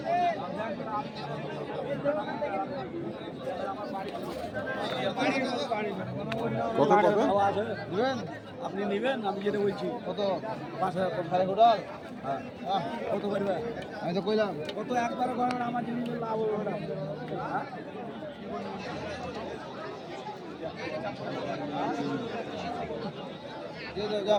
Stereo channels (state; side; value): identical; both; correlation 1.00